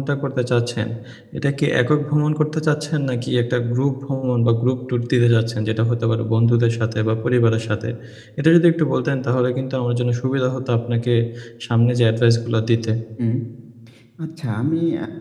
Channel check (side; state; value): both; identical; correlation 1.00